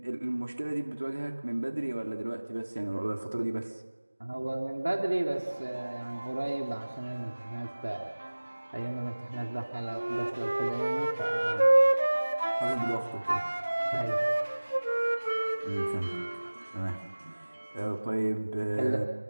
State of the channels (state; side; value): inverted; both; correlation -1.00